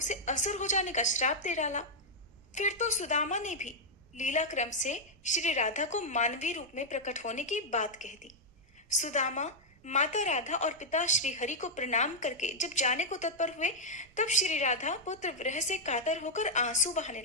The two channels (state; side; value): normal; both; correlation -0.04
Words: असुर हो जाने का श्राप दे डाला। फिर तो सुदामा ने भी लीला क्रम से श्री राधा को मानवीय रूप में प्रकट होने की बात कह दी। सुदामा माता राधा और पिता श्री हरि को प्रणाम करके जब जाने को तत्पर हुए, तब श्री राधा पुत्र विरह से कातर होकर आंसू बहाने